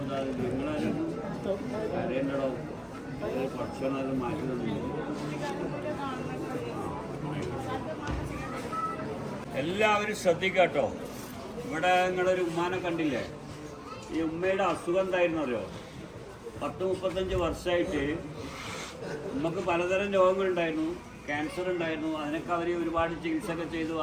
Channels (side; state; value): both; identical; correlation 1.00